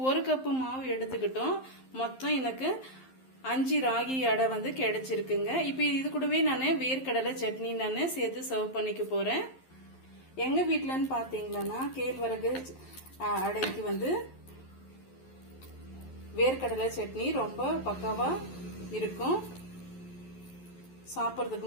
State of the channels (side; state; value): right; late; 11 ms